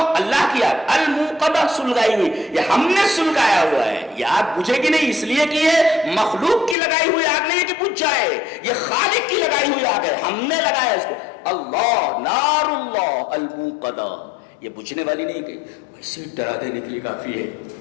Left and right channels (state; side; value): drops out; right; at 6.8 s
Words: اللہ کی آگ، الموقدہ سلگائی ہوئی، یہ ہم نے سلگایا ہوا ہے. یہ آگ بجھے گی نہیں اس لیے کہ یہ مخلوق کی لگائی ہوئی آگ نہیں ہے کہ بجھ جائے، یہ خالق کی لگائی ہوئی آگ ہے، ہم نے لگایا اس کو. اللہ نار اللہ الموقدہ، یہ بجھنے والی نہیں کہ ویسے ڈرا دینے کے لیے کافی ہے.